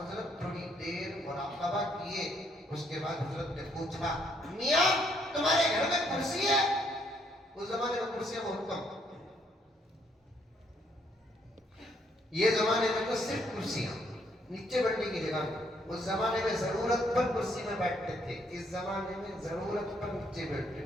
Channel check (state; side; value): normal; both; correlation 0.70